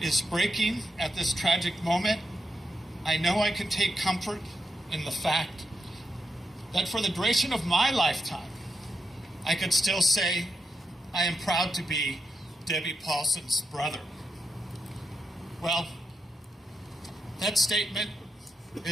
breaking at this tragic moment, I know I can take comfort in the fact that for the duration of my lifetime, I could still say I am proud to be Debbie Paulsen's brother. Well, that statement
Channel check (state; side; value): normal; both; correlation 0.84